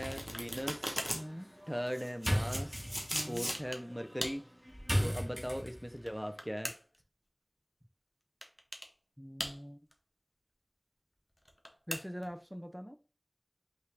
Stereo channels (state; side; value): identical; both; correlation 1.00